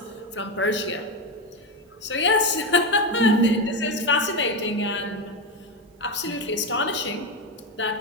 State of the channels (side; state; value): both; normal; correlation 0.13